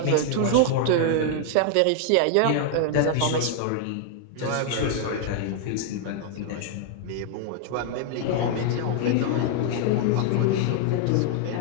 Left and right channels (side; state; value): both; different; correlation -0.01